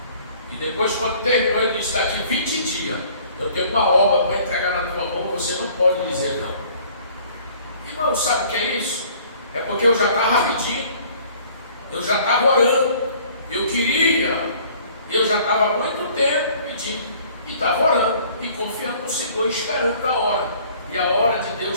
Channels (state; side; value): inverted; both; correlation -0.54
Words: E depois, quando terminou, ele disse: daqui 20 dias eu tenho uma obra para entregar na tua mão, você não pode dizer não. Irmão, sabe o que é isso? É porque eu já estava pedindo, eu já estava orando, eu queria, eu já estava há muito tempo pedindo, e estava orando, e confiando no Senhor, esperando a hora. E a hora de